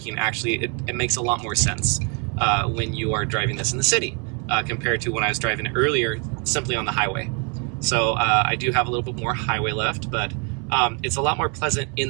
actually, it makes a lot more sense when you are driving this in the city compared to when I was driving it earlier simply on the highway. So I do have a little bit more highway left, but it's a lot more pleasant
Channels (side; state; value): left; quieter; 35.9 dB